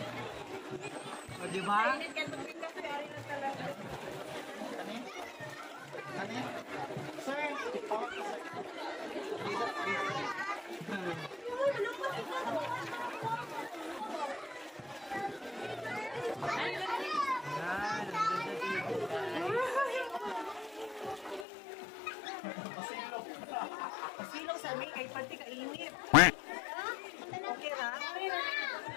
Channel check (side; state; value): right; drops out; at 21.5 s